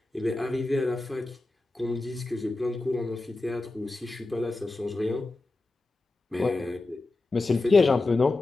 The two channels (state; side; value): quieter; right; 3.1 dB